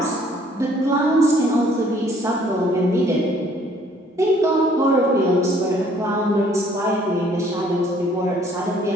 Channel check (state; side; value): normal; both; correlation 0.60